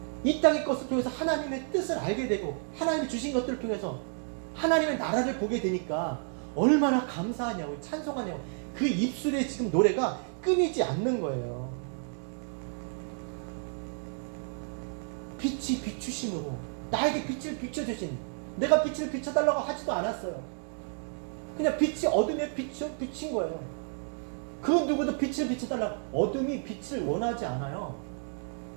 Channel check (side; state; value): left; silent; 57 dB below the other